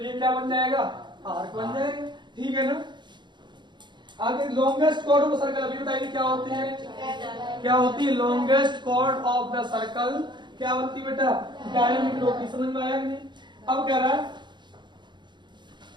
ये क्या बन जाएगा? आर्क बन जाएगा। ठीक है ना? आगे लॉन्गेस्ट कॉर्ड ऑफ सर्कल, अभी बताइए क्या होती है? क्या होती है longest chord of the circle? क्या बनती है बेटा? डायमीटर होती। समझ में आया कि नहीं? अब कह रहा है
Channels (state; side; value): late; left; 0.22 ms